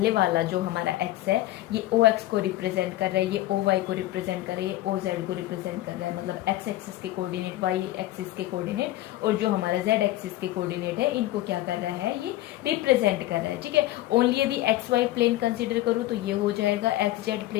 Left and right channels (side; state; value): right; quieter; 15.8 dB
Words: वाला जो हमारा x है, ये OX को रिप्रेजेंट कर रहा है, ये OY को रिप्रेजेंट कर रहा है, ये OZ को रिप्रेजेंट कर रहा है। मतलब x एक्सिस के कोऑर्डिनेट, y एक्सिस के कोऑर्डिनेट, और जो हमारा z एक्सिस के कोऑर्डिनेट है, इनको क्या कर रहा है, ये रिप्रेजेंट कर रहा है, ठीक है। ओनली यदि XY प्लेन कंसिडर करूँ तो ये हो जाएगा, XZ